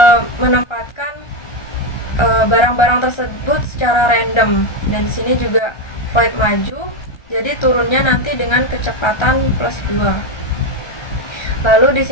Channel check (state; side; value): late; right; 1.3 ms